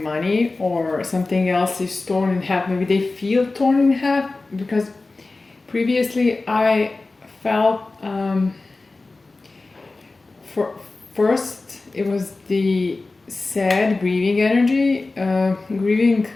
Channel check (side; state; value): right; quieter; 3.4 dB